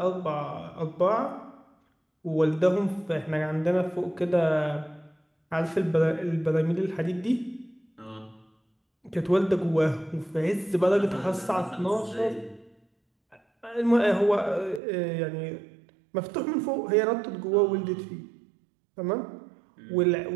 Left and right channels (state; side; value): drops out; left; at 14.8 s